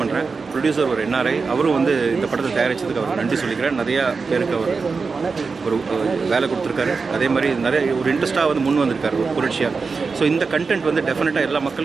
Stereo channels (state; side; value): quieter; left; 4.7 dB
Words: பண்ணுறேன். ப்ரொடியூசர் ஒரு NRI, அவரும் வந்து இந்த படத்தை தயாரித்ததுக்கு அவர் நன்றி சொல்லிக்கிறேன். நிறையா பேருக்கு அவர் ஒரு வேலை கொடுத்துருக்காரு. அதே மாதிரி நிறைய ஒரு இன்ட்ரெஸ்ட்டாக வந்து முன் வந்திருக்காரு ஒரு புரட்சியாக. ஸோ இந்த கண்டென்ட் வந்து டெஃபினட்டாக எல்லா